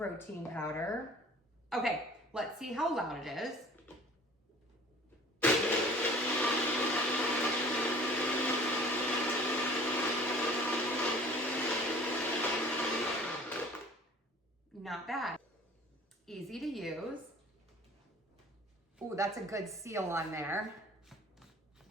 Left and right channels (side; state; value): both; normal; correlation 0.48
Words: powder. Okay, let's see how loud it is. Not bad. Easy to use. Ooh, that's a good seal on there.